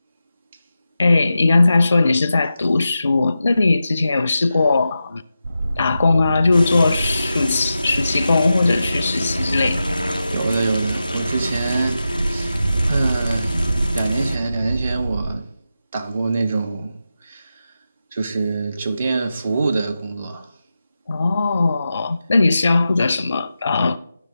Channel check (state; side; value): inverted; both; correlation -0.91